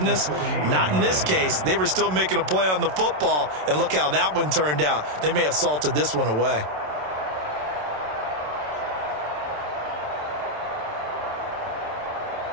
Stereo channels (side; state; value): left; late; 27 ms